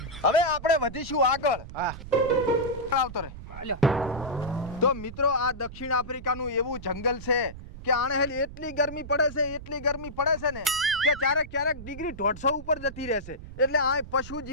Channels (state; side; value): noise; right; rumble, 13 dB below the sound